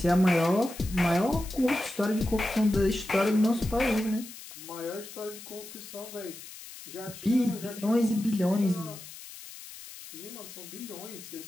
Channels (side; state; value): left; noise; hiss, 15 dB below the sound